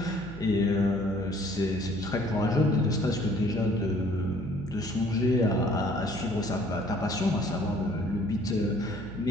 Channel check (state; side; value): noise; right; hum, 13 dB below the sound